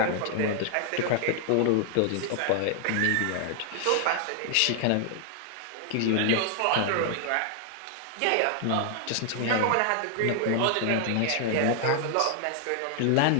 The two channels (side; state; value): both; different; correlation 0.00